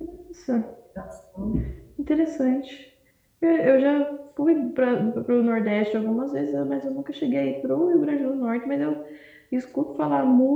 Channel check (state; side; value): identical; both; correlation 1.00